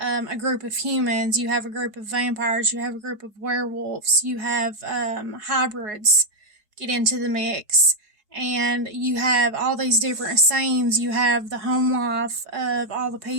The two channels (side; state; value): left; late; 4.8 ms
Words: group of humans, you have a group of vampires, you have a group of werewolves, you have hybrids get into the mix, and you have all these different scenes. You have the home life of all the